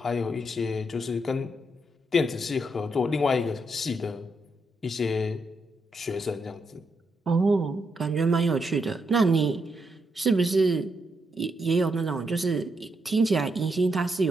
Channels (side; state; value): both; normal; correlation 0.80